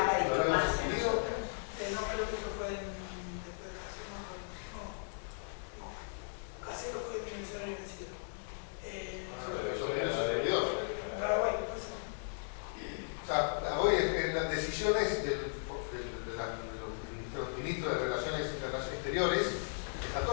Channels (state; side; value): silent; right; digital silence